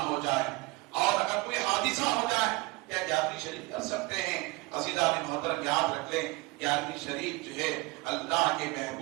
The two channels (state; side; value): quieter; left; 24.4 dB